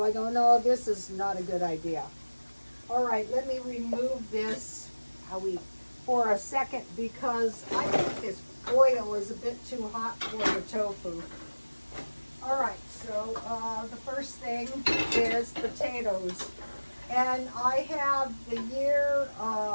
I go, no, this is not a good idea. All right, let me remove this for a second, because I think this oil is a bit too hot for the tofu. All right, so the first thing is potatoes, and I have the year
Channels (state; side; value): inverted; both; correlation -1.00